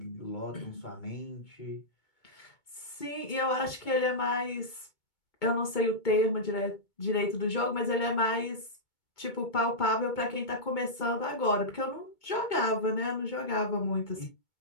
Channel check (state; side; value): late; right; 2.2 ms